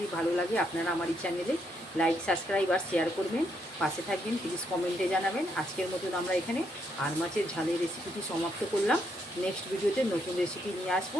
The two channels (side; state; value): both; normal; correlation 0.76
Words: আপনারা আমার এই চ্যানেলে লাইক, সাবস্ক্রাইব আর শেয়ার করবেন, পাশে থাকবেন, প্লিজ কমেন্টে জানাবেন। আজকের মতন আমরা এখানে আর মাছের ঝালের রেসিপিটি সমাপ্ত করলাম। নেক্সট ভিডিওতে নতুন রেসিপি নিয়ে আসবো।